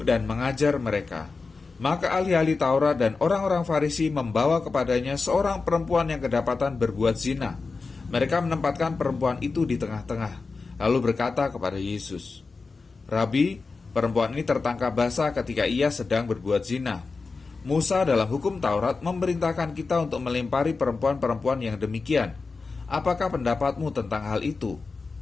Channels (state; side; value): quieter; right; 4.2 dB